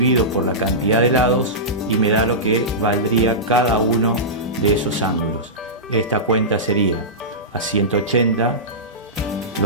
por la cantidad de lados y me da lo que valdría cada uno de esos ángulos. Esta cuenta sería: a 180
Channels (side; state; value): both; normal; correlation -0.16